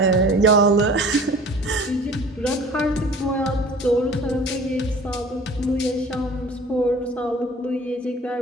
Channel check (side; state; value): both; normal; correlation 0.45